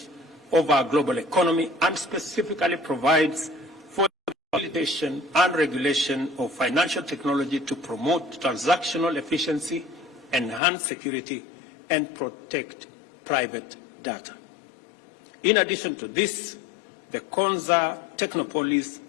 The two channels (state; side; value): drops out; right; at 10.6 s